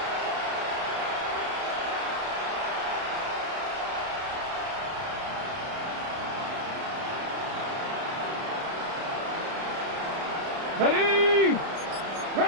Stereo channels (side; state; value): left; late; 31 ms